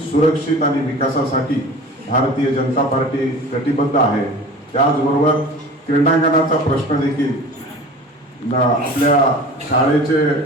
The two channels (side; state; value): both; normal; correlation 0.39